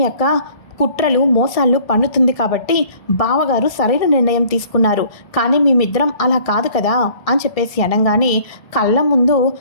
యొక్క కుట్రలు మోసాలు పన్నుతుంది కాబట్టి బావగారు సరైన నిర్ణయం తీసుకున్నారు, కానీ మేమిద్దరం అలా కాదు కదా అని చెప్పేసి అనగానే, కళ్ళ ముందు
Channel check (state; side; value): late; right; 1.6 ms